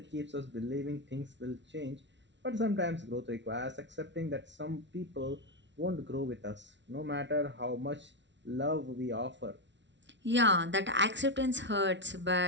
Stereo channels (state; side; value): late; left; 0.52 ms